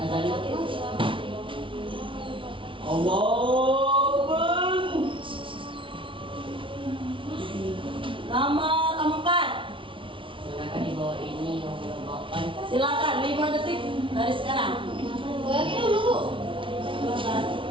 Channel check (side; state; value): left; late; 0.25 ms